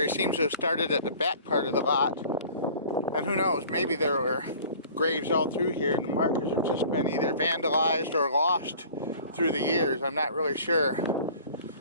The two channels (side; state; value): both; inverted; correlation -0.47